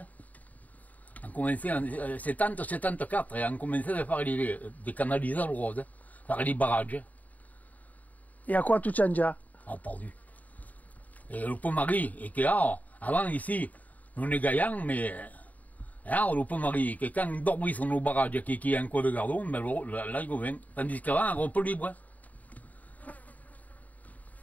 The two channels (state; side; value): late; right; 0.075 ms